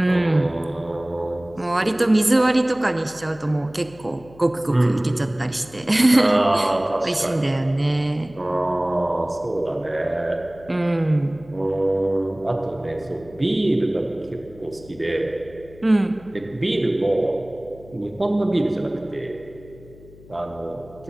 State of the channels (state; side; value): noise; left; hum, 22 dB below the sound